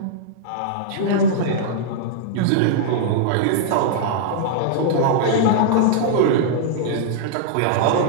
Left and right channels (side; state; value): both; different; correlation -0.01